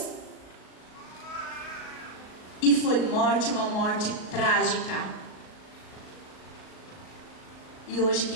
e foi morte, uma morte trágica. E hoje,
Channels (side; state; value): right; late; 38 ms